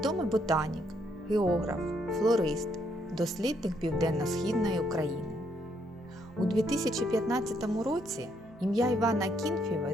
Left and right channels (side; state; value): both; normal; correlation 0.73